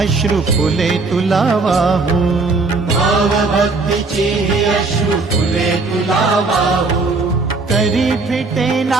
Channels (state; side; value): quieter; left; 3.8 dB